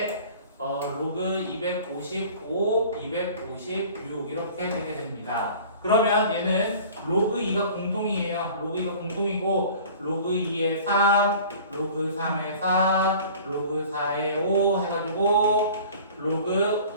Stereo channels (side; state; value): both; inverted; correlation -0.45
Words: 로그 255, 256 이렇게 되게 됩니다. 그러면 얘는 로그 2가 공통이에요. 로그 2가 공통이고 로그 2에 3, 로그 3에 4, 로그 4에 5 해가지고 로그